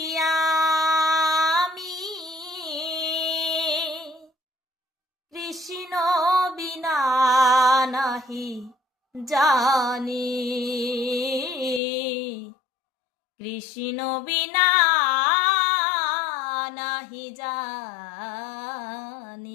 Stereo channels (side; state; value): right; drops out; at 11.8 s